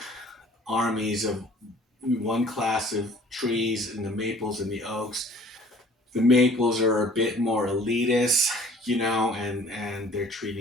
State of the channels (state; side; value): normal; both; correlation 0.52